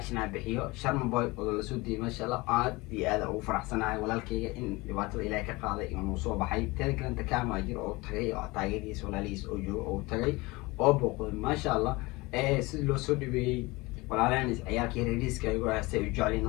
aan bixiyo Sharma Boy oo la soo diiday ma sha Allah aad iyo aad ugu faraxsanahay walaalkayga in dhibaatada Ilaahay ka qaaday inuu soo baxay taan kalanta kaama jiro oo tagay oo taageeriis walaalihiis oo joogo oo tagay oo booqday ma sha Allah sidii loo soo dhibeeyay walaalaan ciyaalkii reeriska ay ugu haystay u jeclin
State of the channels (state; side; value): quieter; right; 23.0 dB